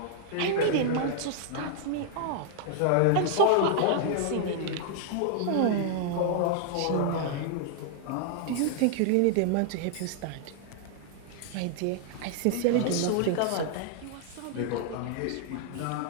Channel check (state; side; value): different; both; correlation -0.01